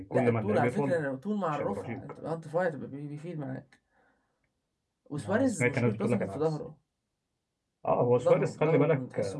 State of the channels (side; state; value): both; identical; correlation 1.00